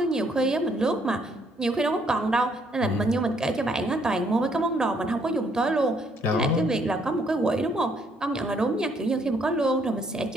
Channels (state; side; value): normal; both; correlation 0.69